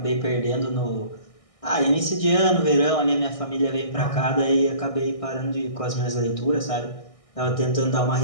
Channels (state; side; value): late; right; 1.6 ms